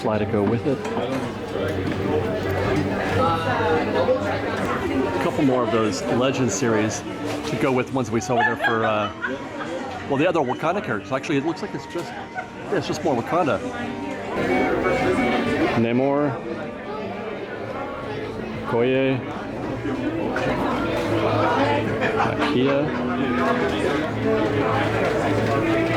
to go with it. A couple more of those Legend series to go with ones we saw over there for well, the other Wakanda characters. Actually, it looks like it's just more Wakanda. Namor, Okoye, Nakia,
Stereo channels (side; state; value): both; identical; correlation 1.00